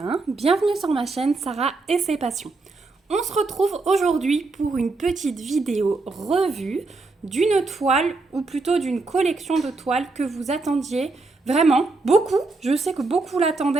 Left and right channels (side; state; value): left; quieter; 3.6 dB